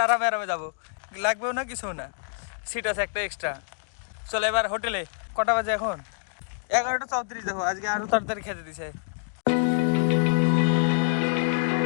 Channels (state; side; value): silent; right; digital silence